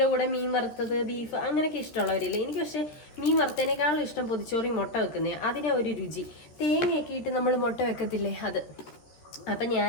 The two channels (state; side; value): late; right; 13 ms